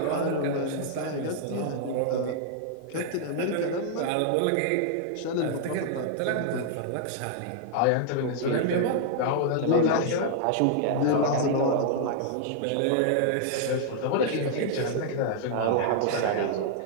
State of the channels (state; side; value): different; both; correlation -0.01